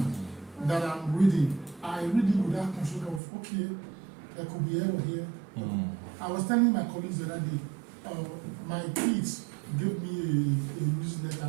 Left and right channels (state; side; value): drops out; left; at 3.2 s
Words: that I'm reading, I read it with that concept of, okay, there could be error here. I was telling my colleagues the other day, my kids gave me a